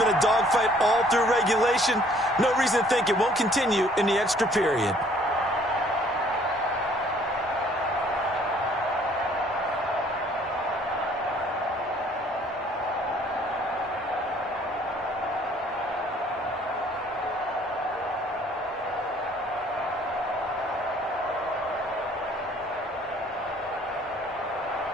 a dogfight all through regulation. No reason to think it won't continue in the extra period.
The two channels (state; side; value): normal; both; correlation 0.59